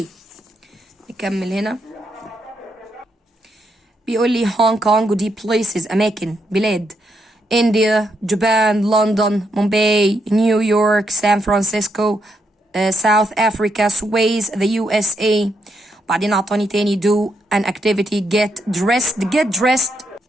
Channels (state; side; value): normal; both; correlation 0.79